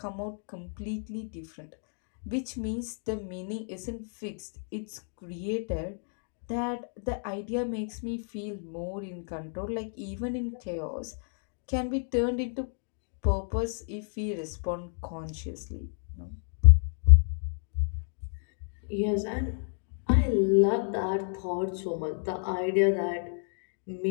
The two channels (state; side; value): silent; right; 57 dB below the other